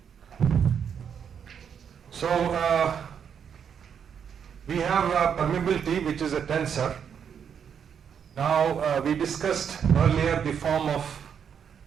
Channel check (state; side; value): quieter; left; 7.7 dB